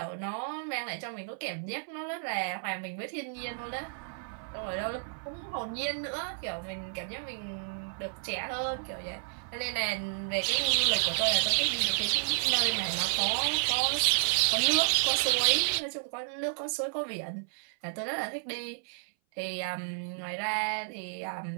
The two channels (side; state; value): left; silent; 57 dB below the other